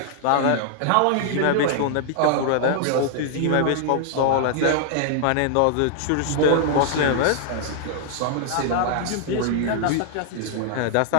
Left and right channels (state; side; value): different; both; correlation -0.01